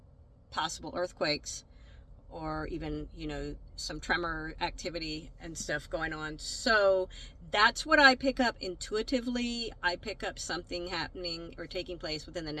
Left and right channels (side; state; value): both; identical; correlation 1.00